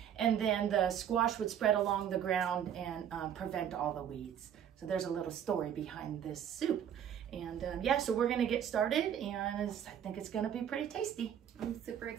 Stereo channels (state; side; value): quieter; left; 9.3 dB